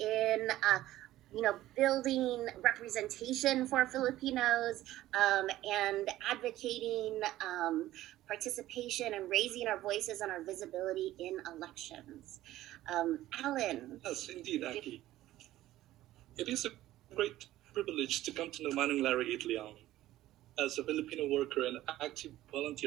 building representation for Filipinos and advocating participation and raising our voices and our visibility in elections. Alan. Yes, indeed, Aki. It is a great privilege to come to know Manang Larry Itliong. As a Filipino worker and active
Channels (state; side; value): quieter; left; 15.0 dB